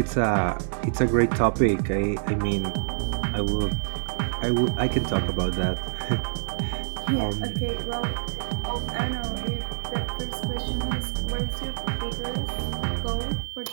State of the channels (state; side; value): silent; left; digital silence